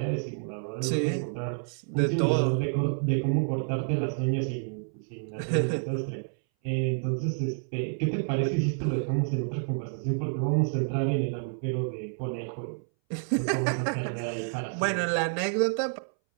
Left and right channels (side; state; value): left; silent; 59 dB below the other